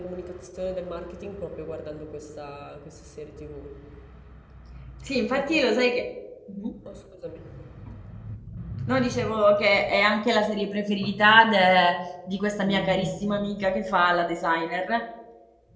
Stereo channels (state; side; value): identical; both; correlation 1.00